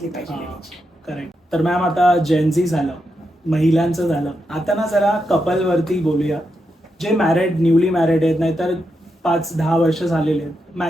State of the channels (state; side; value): normal; both; correlation 0.85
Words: पाहिजे हा. लेडीची. करेक्ट. तर मॅम आता जेनझी झालं, महिलांचं झालं, आता ना जरा कपल वरती बोलूया. जे मॅरिड, न्यूली मॅरिड आहेत, नाहीतर 5-10 वर्ष झालेले आहेत,